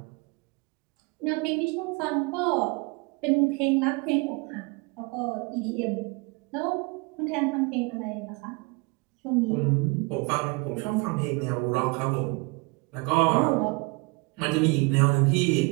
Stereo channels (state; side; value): quieter; left; 28.5 dB